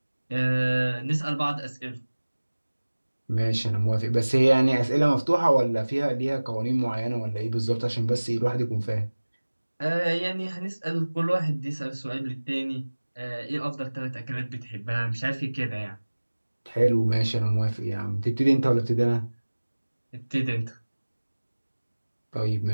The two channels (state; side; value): inverted; both; correlation -1.00